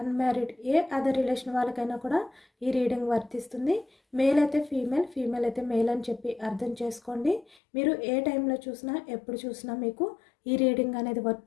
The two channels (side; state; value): right; drops out; at 7.6 s